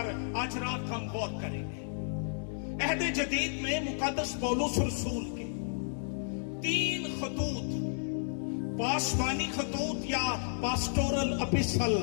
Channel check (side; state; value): right; silent; digital silence